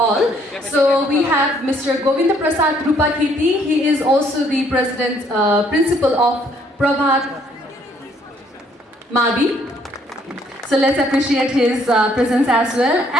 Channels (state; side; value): normal; both; correlation 0.66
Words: So we have Mr. Govinda Prasad Rupakirti. He is also the president, principal of Prabhat Mabi. So let's appreciate his presence as well.